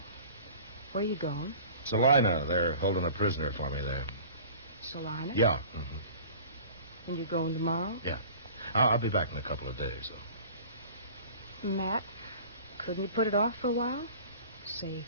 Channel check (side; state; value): both; inverted; correlation -0.43